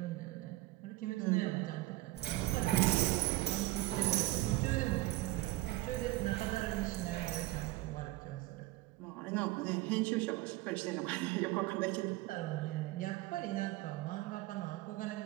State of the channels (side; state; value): left; quieter; 18.0 dB